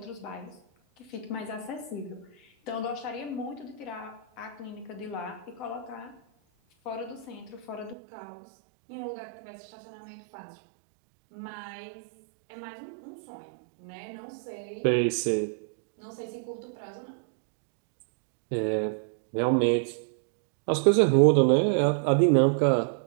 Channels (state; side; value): drops out; left; at 8.0 s